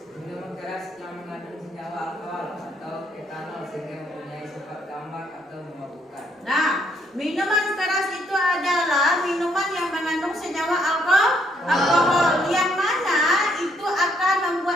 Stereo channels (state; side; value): normal; both; correlation 0.70